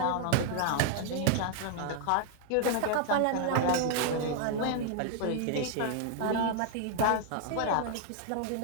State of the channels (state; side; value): different; both; correlation 0.00